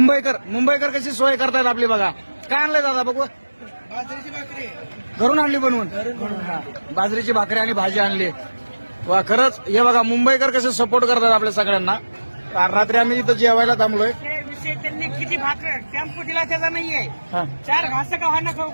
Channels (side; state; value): both; inverted; correlation -1.00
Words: कशी सोय करतायत आपली बघा. काय आणलंय दादा बघू. बाजरीची भाकरी घरून आणली बनवून. बाजरीची भाकरी आणि भाजी आणली. वा खरंच हे बघा मुंबईकर कसे सपोर्ट करतात आपल्या सगळ्यांना. रात्री आम्ही इथं जेवायला थांबलोय. विषय त्यांनी किती भाकर टेम्पो दिला त्याचा नाहीये. हा. 4 घास का खाणं खाऊ